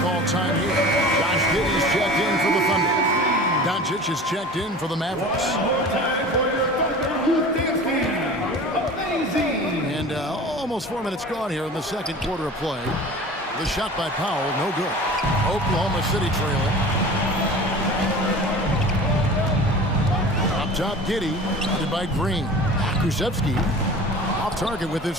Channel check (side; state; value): both; normal; correlation 0.38